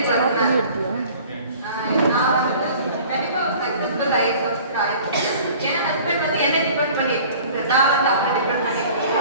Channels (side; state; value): both; inverted; correlation -0.47